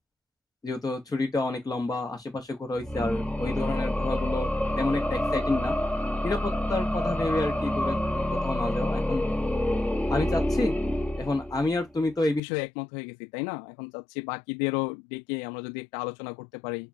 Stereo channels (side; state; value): right; drops out; at 12.4 s